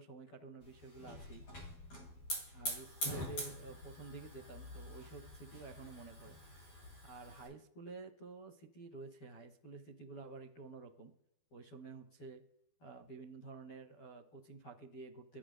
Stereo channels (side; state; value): right; late; 12 ms